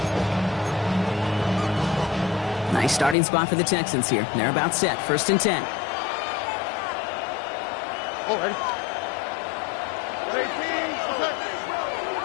Nice starting spot for the Texans here. They're about set. 1st and 10. Oh, ready.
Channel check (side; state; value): right; drops out; at 3.2 s